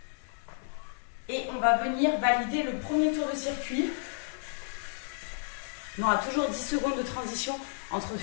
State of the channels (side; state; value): right; silent; 57 dB below the other